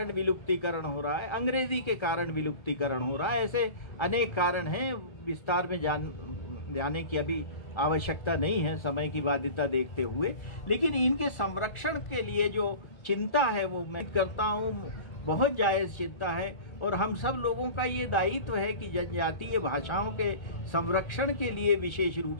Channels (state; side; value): late; right; 1.3 ms